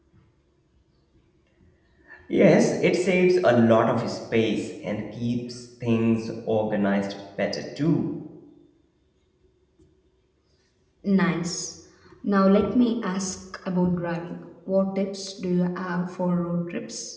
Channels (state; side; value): identical; both; correlation 1.00